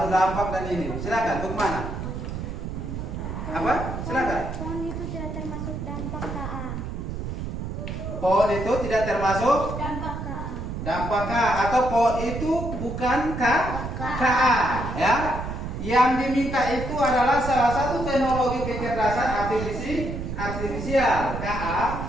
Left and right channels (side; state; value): right; noise; rumble, 6 dB below the sound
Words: dampak dan ini. Silakan, bagaimana? Apa? Silakan. Pohon itu tidak termasuk dampak KA. Pohon itu tidak termasuk Dampak KA. dampak K, atau pohon itu bukan KA ya. Yang diminta itu adalah salah satu teknologi kecerdasan artifisial